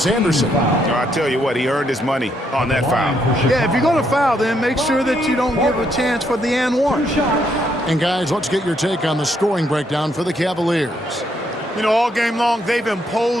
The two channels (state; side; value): normal; both; correlation 0.74